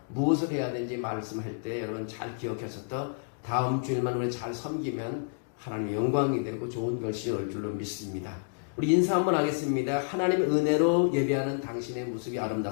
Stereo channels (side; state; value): right; silent; digital silence